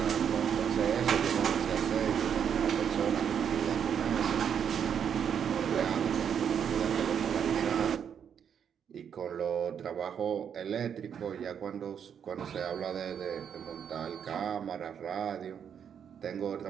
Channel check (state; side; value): quieter; left; 8.0 dB